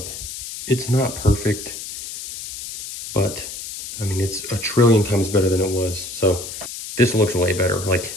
It's not perfect, but I mean, it's a trillion times better than it was. So this looks way better. Like,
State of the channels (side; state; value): left; noise; hiss, 10 dB below the sound